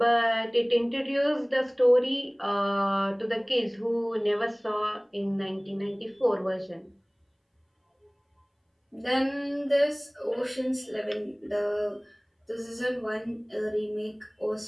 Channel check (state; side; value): identical; both; correlation 1.00